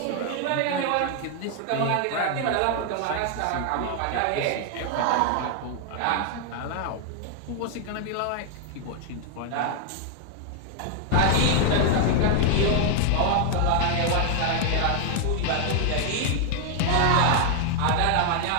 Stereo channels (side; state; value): both; different; correlation 0.00